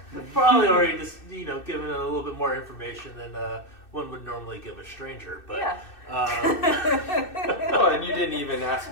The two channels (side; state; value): right; late; 2.6 ms